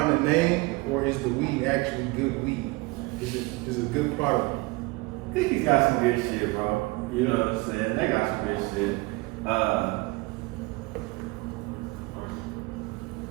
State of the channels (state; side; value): quieter; left; 24.1 dB